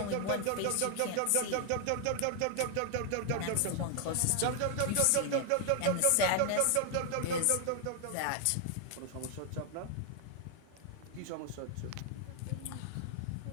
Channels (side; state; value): both; different; correlation 0.00